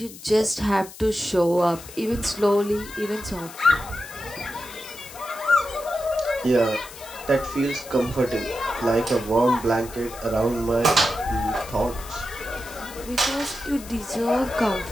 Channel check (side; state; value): left; noise; hiss, 16 dB below the sound